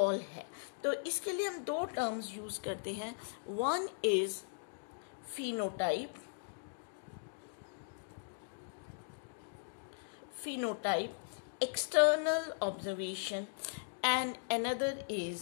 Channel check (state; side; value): silent; right; digital silence